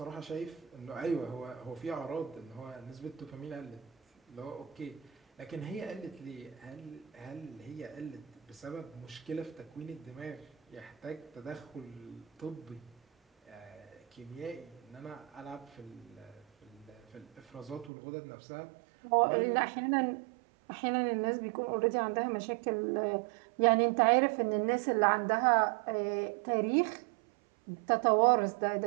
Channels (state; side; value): drops out; left; at 17.9 s